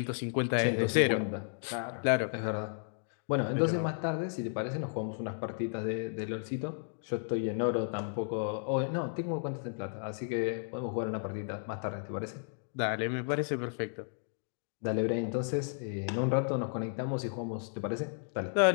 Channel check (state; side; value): silent; right; digital silence